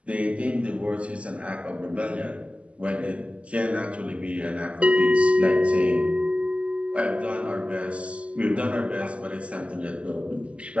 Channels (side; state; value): left; late; 0.061 ms